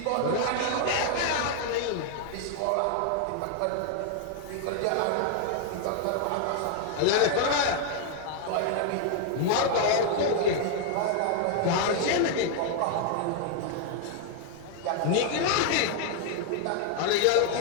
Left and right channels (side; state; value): both; different; correlation 0.00